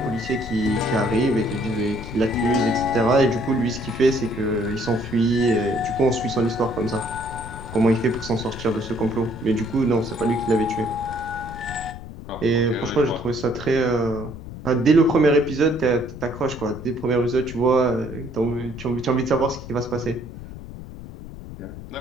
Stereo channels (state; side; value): noise; left; rumble, 12 dB below the sound